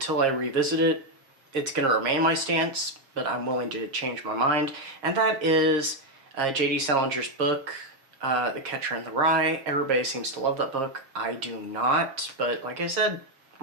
I revisit it, it's going to remain my stance, but I'm willing to change my mind, and that is J.D. Salinger's book, The Catcher in the Rye. Everybody seems to love that book. I do not, but like I said,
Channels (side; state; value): left; late; 7.4 ms